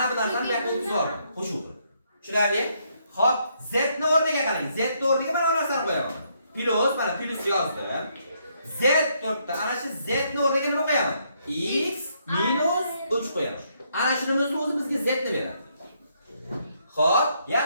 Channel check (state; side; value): inverted; both; correlation -0.73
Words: bu narsani bu yoqqa o'tkazib qo'shuv qilib. Tushunarli? Xo'p, z ni o'rniga qarang. Z ni o'rniga mana bu narsani qo'yaman. Plus, mana plus yozdim. Z turibdi. Ana shu z ni o'rniga nima qo'yaman? X minus 3 qo'yaman. Ana shunimizni o'zi bizga z ni beradi. Xo'p,